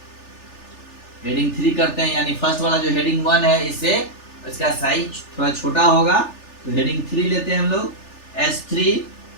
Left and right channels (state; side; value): late; right; 3.4 ms